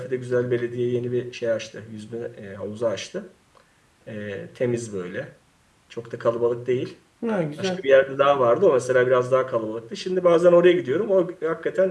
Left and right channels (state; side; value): identical; both; correlation 1.00